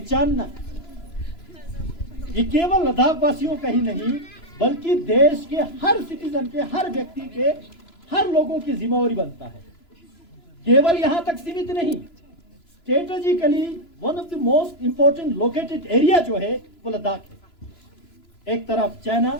ये केवल लद्दाख वासियों का ही नहीं बल्कि देश के हर सिटीजन के, हर व्यक्ति के, हर लोगों की जिम्मेवारी बनता है। केवल यहां तक सीमित नहीं, strategically one of the most important located area जो है वो लद्दाख है। एक तरफ चाइना,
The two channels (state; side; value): late; right; 3.0 ms